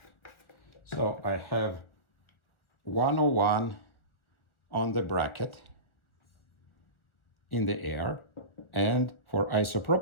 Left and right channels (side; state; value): right; late; 1.4 ms